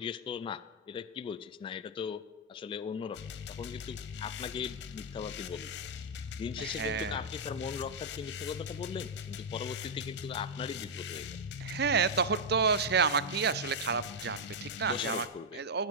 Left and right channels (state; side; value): normal; both; correlation -0.02